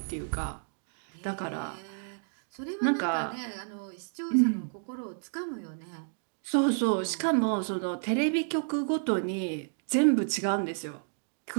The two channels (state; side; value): silent; left; digital silence